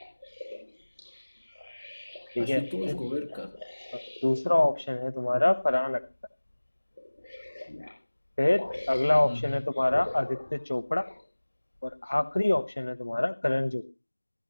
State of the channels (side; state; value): both; inverted; correlation -1.00